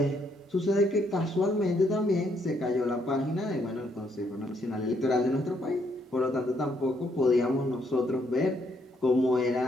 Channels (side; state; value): both; normal; correlation 0.72